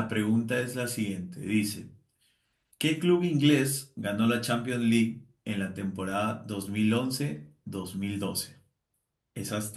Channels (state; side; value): identical; both; correlation 1.00